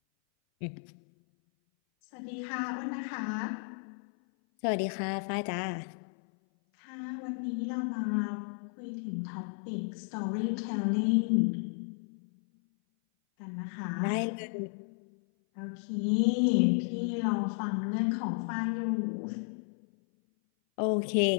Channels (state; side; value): silent; right; 56 dB below the other